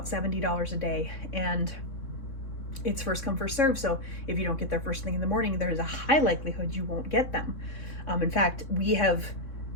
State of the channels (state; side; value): late; right; 3.6 ms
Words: $70 a day, and it's first come, first serve. So if you don't get there first thing in the morning, there's a high likelihood you won't get them. In fact, we have